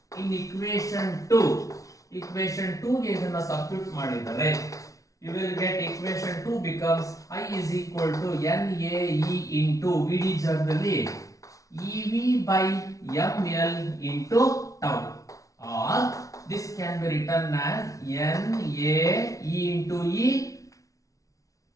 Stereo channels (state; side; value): late; right; 0.17 ms